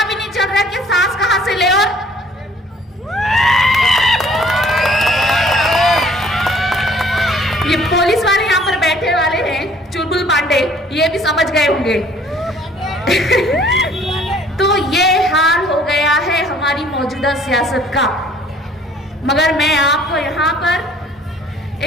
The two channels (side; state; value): both; normal; correlation 0.56